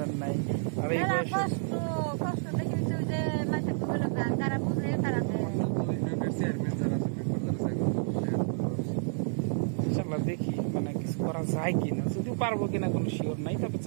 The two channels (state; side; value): silent; left; digital silence